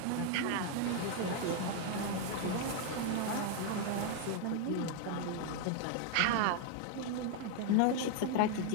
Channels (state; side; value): different; both; correlation 0.00